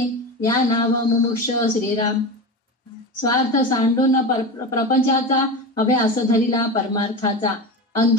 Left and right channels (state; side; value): normal; both; correlation 0.24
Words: या नाव मुमुक्ष श्रीराम स्वार्थ सांडून प्रपंचाचा अभ्यास धरिला परमार्थाचा